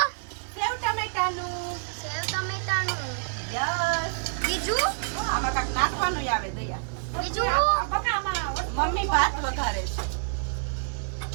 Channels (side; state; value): left; silent; 60 dB below the other